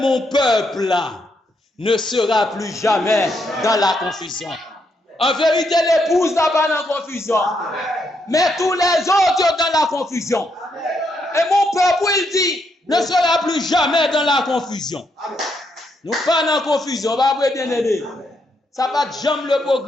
peuple là ne sera plus jamais dans la confusion. En vérité, l'épouse n'a pas dans la confusion. Mais tous les autres sont dans la confusion. Et mon peuple, il dit, ne sera plus jamais dans la confusion. Nous pas dans la confusion, va bien aider. Ça va jamais le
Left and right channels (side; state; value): both; normal; correlation 0.78